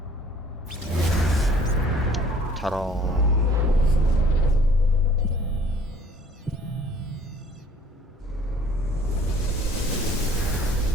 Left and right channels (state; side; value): normal; both; correlation 0.55